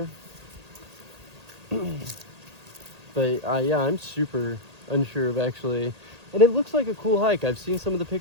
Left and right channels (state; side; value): late; left; 1.8 ms